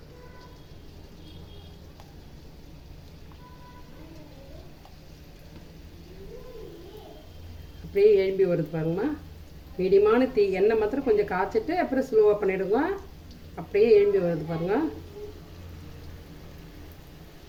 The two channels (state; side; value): identical; both; correlation 1.00